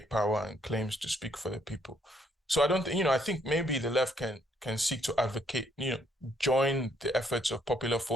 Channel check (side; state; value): both; normal; correlation 0.69